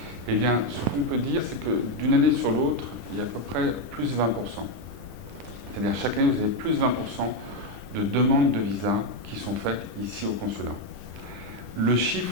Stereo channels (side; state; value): left; late; 10 ms